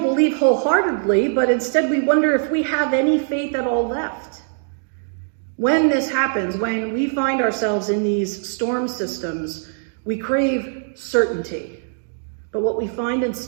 believe wholeheartedly, but instead we wonder if we have any faith at all left. When this happens, when we find ourselves in these storm systems, we crave certainty. But what we find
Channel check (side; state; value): left; silent; digital silence